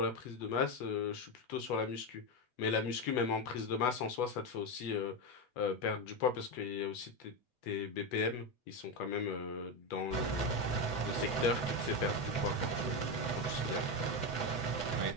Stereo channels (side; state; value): right; late; 8.1 ms